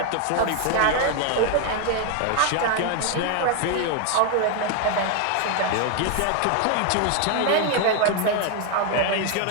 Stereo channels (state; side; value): different; both; correlation 0.01